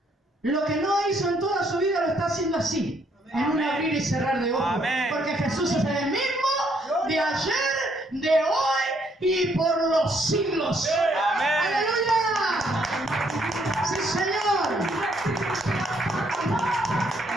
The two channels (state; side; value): normal; both; correlation 0.70